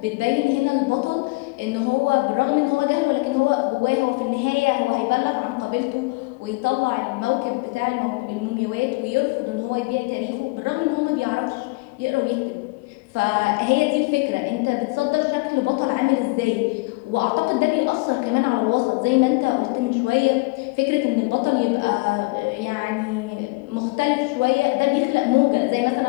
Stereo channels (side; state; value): right; quieter; 25.9 dB